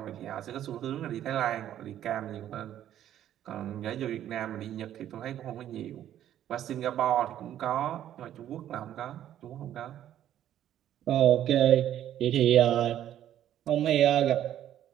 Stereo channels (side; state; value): left; quieter; 11.4 dB